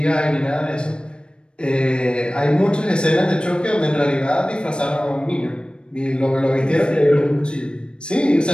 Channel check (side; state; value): right; late; 0.054 ms